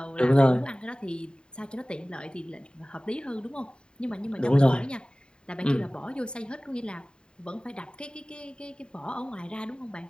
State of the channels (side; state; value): right; late; 0.050 ms